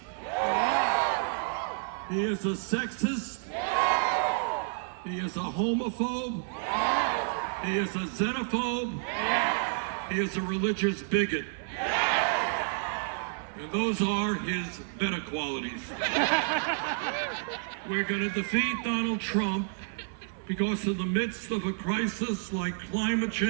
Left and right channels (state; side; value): silent; left; 56 dB below the other